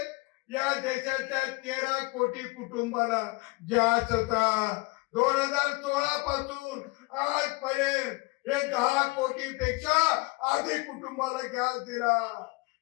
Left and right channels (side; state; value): right; quieter; 25.3 dB